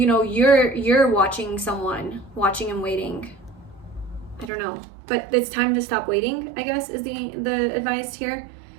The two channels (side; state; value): left; drops out; at 4.5 s